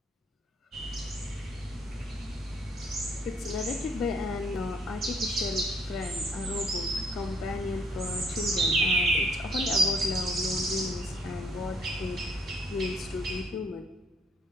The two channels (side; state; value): both; normal; correlation 0.65